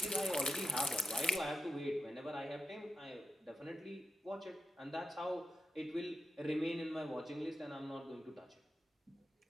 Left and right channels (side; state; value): both; normal; correlation 0.90